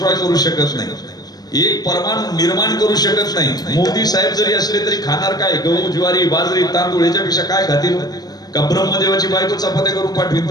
करू शकत नाही, एक परमाणु निर्माण करू शकत नाही. मोदी साहेब जरी असले तरी खाणार काय? गहू, ज्वारी, बाजरी, तांदूळ याच्यापेक्षा काय खातील? का ब्रह्मदेवाची बायको चपात्या करून पाठवीन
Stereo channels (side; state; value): right; late; 0.19 ms